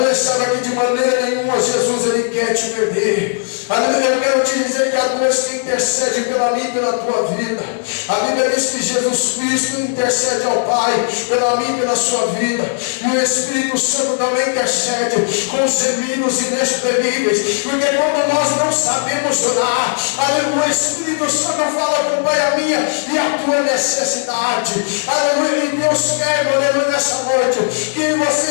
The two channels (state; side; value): silent; right; 55 dB below the other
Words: Sabe que de maneira nenhuma Jesus Ele quer te perder. Aleluia. Eu quero te dizer que a Deus que intercede pela minha e pela tua vida. A Bíblia diz que Jesus Cristo intercede ao Pai pela minha e pela sua vida. E o Espírito Santo também intercede com gemidos inexprimíveis. Porque quando nós não sabemos orar, aleluia, o Espírito Santo fala com o Pai a minha e a tua necessidade. Aleluia. E Deus quer, aleluia, nessa noite, que você